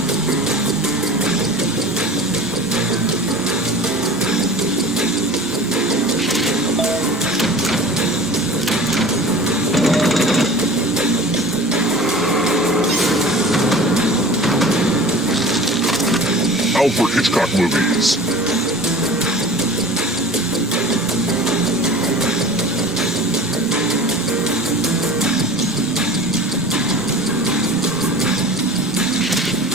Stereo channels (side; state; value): both; normal; correlation 0.40